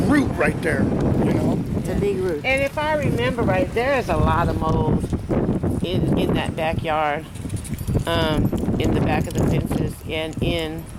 root right there. You know, It's a big root. And if I remember right, there is a lot of mold in that backyard, in the back of the fences and in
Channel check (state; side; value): identical; both; correlation 1.00